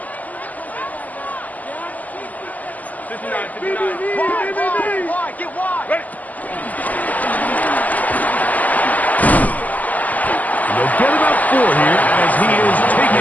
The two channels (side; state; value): right; late; 0.079 ms